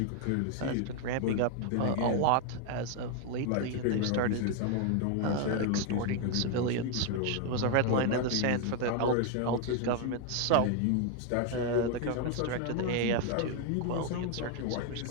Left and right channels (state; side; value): different; both; correlation 0.01